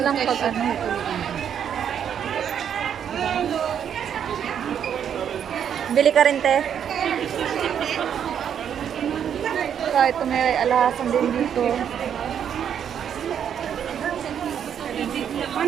lang pag ano. Bili ka rin, te. So, ito may alahasan din dito.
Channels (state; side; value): quieter; left; 8.6 dB